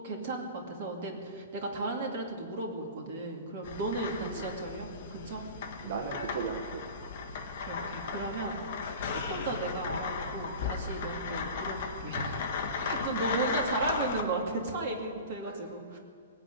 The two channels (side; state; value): both; inverted; correlation -0.35